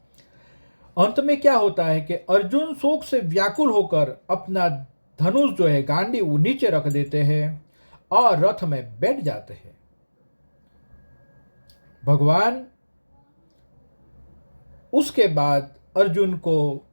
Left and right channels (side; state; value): both; inverted; correlation -1.00